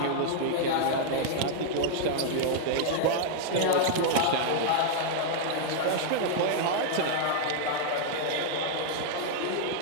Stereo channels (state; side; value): different; both; correlation -0.01